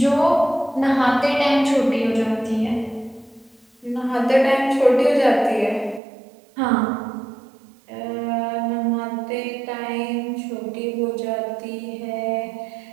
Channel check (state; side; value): drops out; left; at 6.0 s